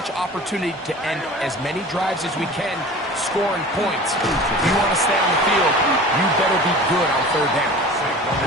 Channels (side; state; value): both; normal; correlation 0.39